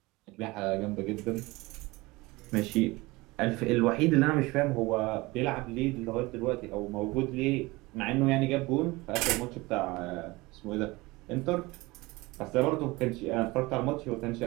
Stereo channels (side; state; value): left; quieter; 22.1 dB